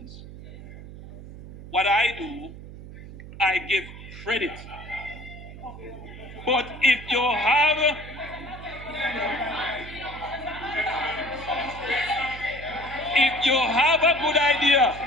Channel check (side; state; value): right; noise; hum, 14 dB below the sound